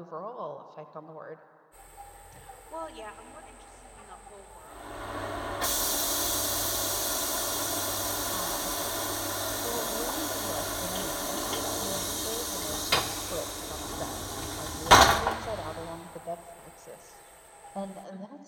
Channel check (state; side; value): identical; both; correlation 1.00